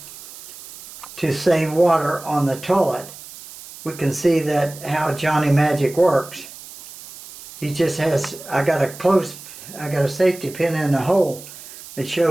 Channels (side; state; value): right; noise; hiss, 16 dB below the sound